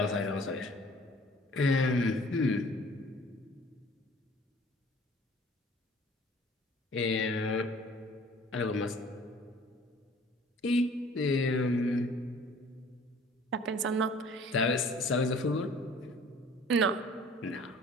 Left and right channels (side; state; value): both; normal; correlation 0.51